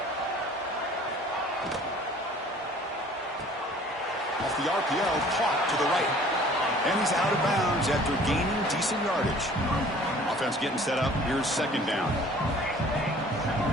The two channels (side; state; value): both; normal; correlation 0.51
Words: Off the RPO, caught to the right. And he's out of bounds after gaining decent yardage. Offense getting set up. Here's 2nd down.